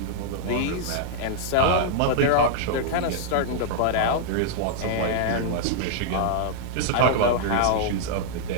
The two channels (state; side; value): different; both; correlation -0.01